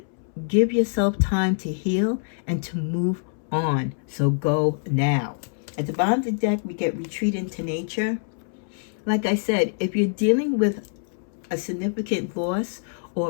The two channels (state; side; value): silent; right; 62 dB below the other